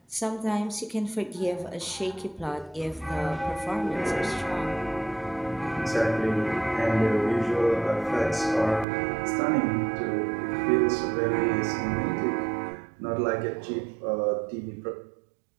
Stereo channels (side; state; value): left; drops out; at 8.8 s